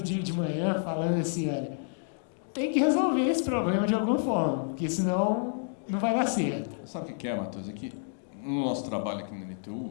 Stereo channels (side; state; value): right; silent; digital silence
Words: dia de manhã falando assim, olha, tem que resolver esse problema de alguma forma, porque senão não vai dar certo. Sabe o que é, Matheus? É que no nosso trabalho aqui na